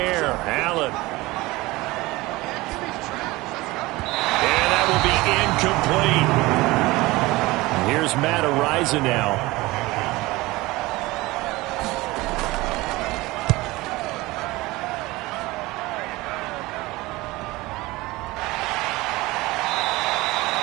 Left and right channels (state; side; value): quieter; left; 20.6 dB